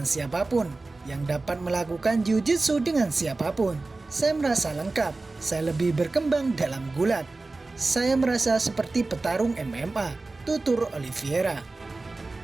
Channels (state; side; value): quieter; left; 3.4 dB